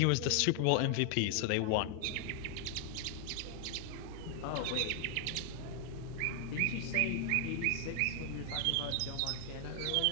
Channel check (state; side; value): different; both; correlation 0.00